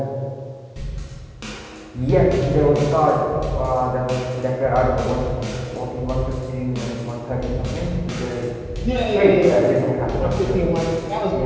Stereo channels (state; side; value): identical; both; correlation 1.00